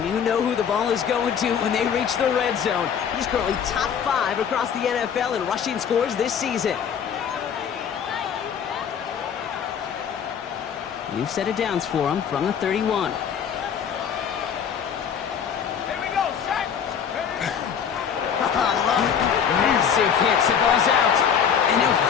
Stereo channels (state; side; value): quieter; right; 7.7 dB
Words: you know who the ball is going to when they reach the red zone. He's currently top 5 across the NFL in rushing scores this season. New set of downs for him from the 31. Here we go, set. Massive hits, the ball's out. And he'll